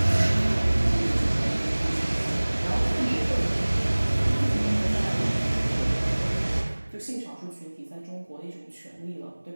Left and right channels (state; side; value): inverted; both; correlation -1.00